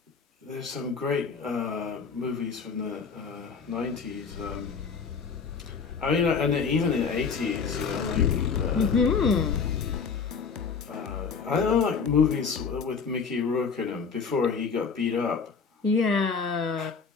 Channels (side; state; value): right; quieter; 5.5 dB